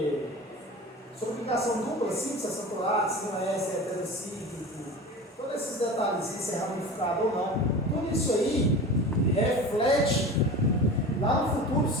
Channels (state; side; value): normal; both; correlation 0.33